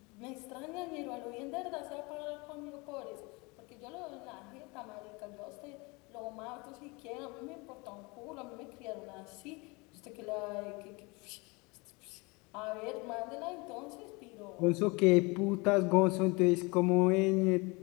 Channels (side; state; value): right; quieter; 26.8 dB